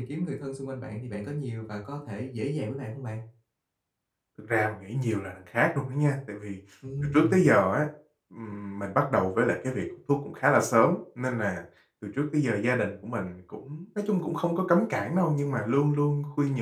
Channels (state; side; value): identical; both; correlation 1.00